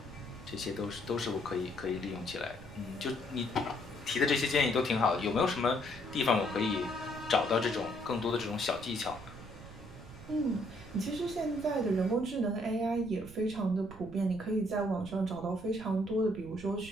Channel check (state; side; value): noise; right; rumble, 16 dB below the sound